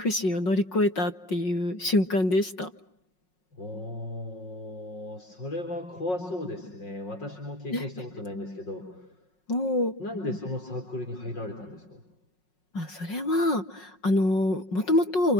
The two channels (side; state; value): right; late; 5.5 ms